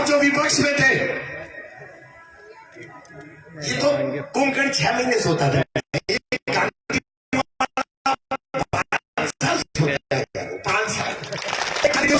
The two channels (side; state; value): both; identical; correlation 1.00